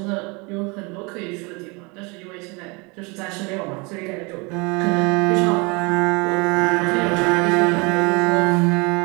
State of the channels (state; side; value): quieter; left; 28.7 dB